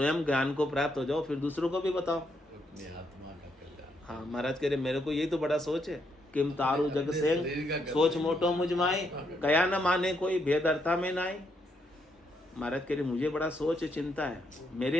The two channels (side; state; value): both; normal; correlation 0.76